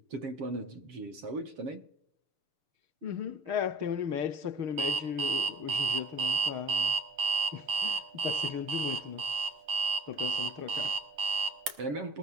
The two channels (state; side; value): late; left; 7.6 ms